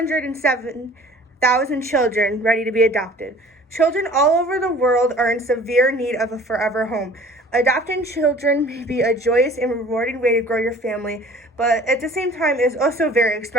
children ready to be adopted. Children all over the world are in severe need of a forever home. Adopting children may be a joyous and rewarding way to grow your family, but at the same time is also very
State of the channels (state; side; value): normal; both; correlation 0.48